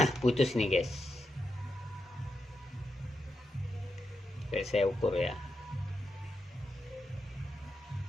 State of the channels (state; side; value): normal; both; correlation 0.85